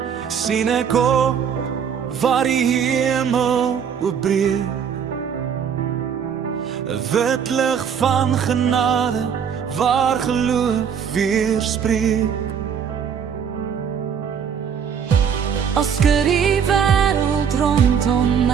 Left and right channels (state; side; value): quieter; left; 7.5 dB